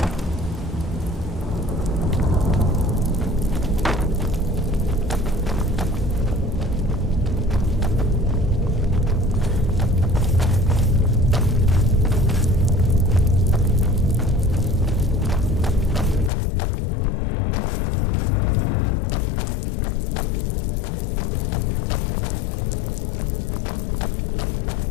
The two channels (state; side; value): drops out; right; at 16.3 s